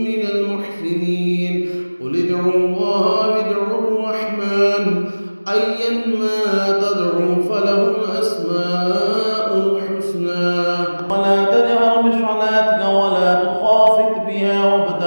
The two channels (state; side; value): inverted; both; correlation -1.00